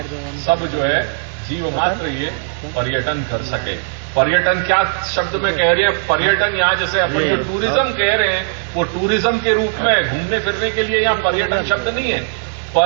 सब जो है जीव मात्र ये पर्यटन कर सके। पर्यटन क्या शब्द में कह रहे हैं? पर्यटन यहाँ जैसे अपन जो टूरिज्म कह रहे हैं वो टूरिज्म के रूप में घूमने फिरने के लिए यहाँ पर्यटन शब्द नहीं है।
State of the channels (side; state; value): left; silent; digital silence